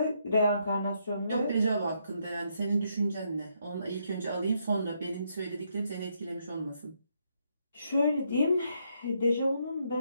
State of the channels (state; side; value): inverted; both; correlation -0.76